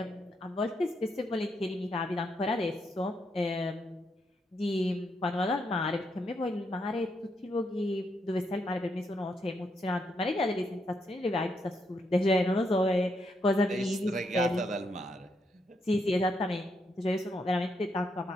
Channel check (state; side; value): normal; both; correlation 0.79